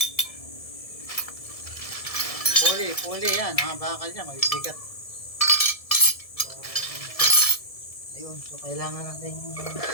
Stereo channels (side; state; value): right; late; 1.7 ms